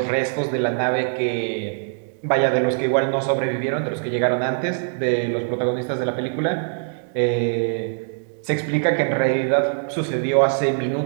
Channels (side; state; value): left; silent; digital silence